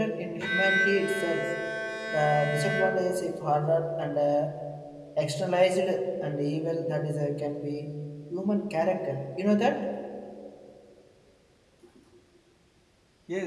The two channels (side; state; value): both; identical; correlation 1.00